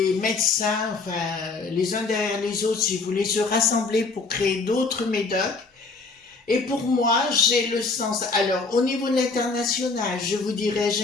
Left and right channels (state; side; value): quieter; right; 4.0 dB